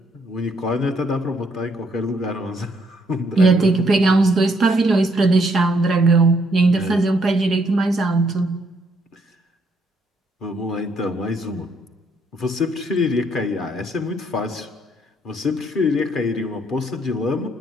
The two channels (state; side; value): normal; both; correlation 0.70